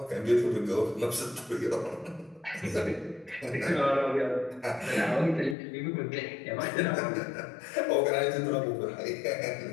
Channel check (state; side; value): drops out; right; at 5.6 s